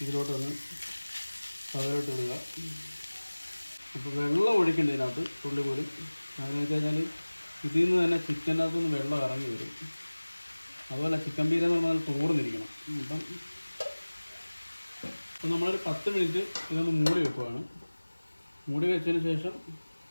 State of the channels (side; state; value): both; inverted; correlation -1.00